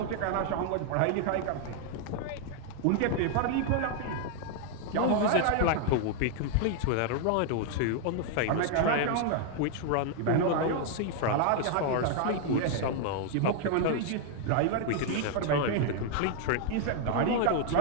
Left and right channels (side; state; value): both; different; correlation 0.00